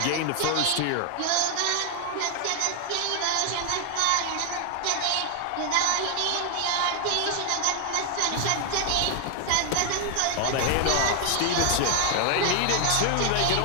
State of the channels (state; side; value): different; both; correlation 0.00